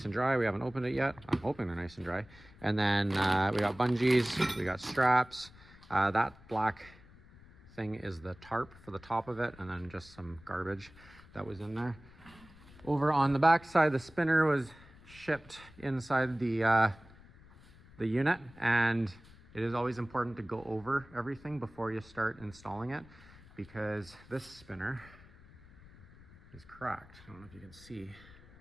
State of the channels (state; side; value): noise; left; rumble, 22 dB below the sound